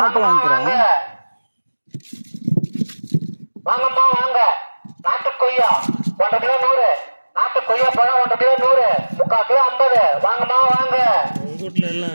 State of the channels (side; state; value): both; inverted; correlation -1.00